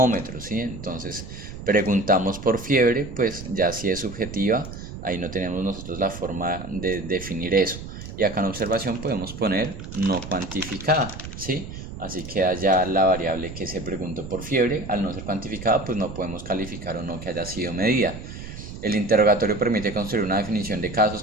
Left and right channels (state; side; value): noise; right; rumble, 11 dB below the sound